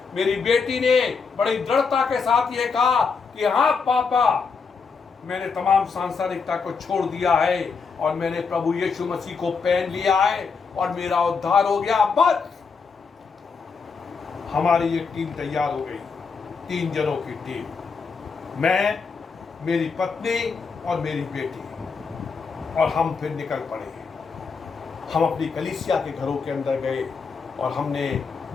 मेरी बेटी ने बड़ी दृढ़ता के साथ ये कहा कि हाँ पापा, मैंने तमाम सांसारिकता को छोड़ दिया है और मैंने प्रभु यीशु मसीह को पहन लिया है और मेरा उद्धार हो गया। बस हमारी ये टीम तैयार हो गई, 3 जनों की टीम, मैं, मेरी पत्नी और मेरी बेटी, और हम फिर निकल पड़े। हम अपनी कलीसिया के घरों के अंदर गए और हमने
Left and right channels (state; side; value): quieter; right; 5.2 dB